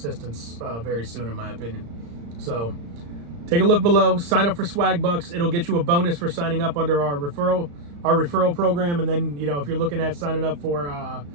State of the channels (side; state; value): left; late; 35 ms